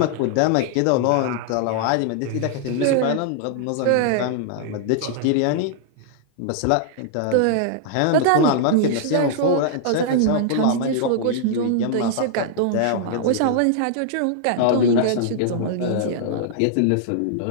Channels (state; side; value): different; both; correlation -0.01